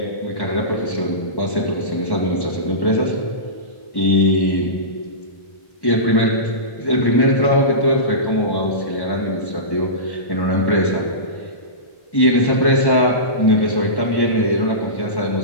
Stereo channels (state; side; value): late; right; 1.1 ms